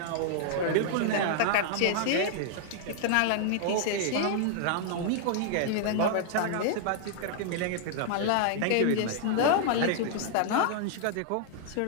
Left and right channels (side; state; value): both; different; correlation -0.01